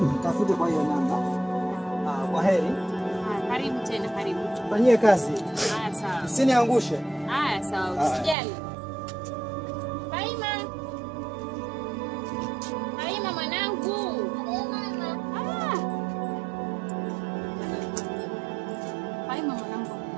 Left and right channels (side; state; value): left; drops out; at 8.3 s